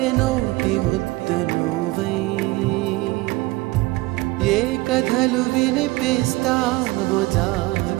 నోటి ముద్ద నువ్వై ఏ కథలు వినిపిస్తావో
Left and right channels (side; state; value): left; quieter; 21.1 dB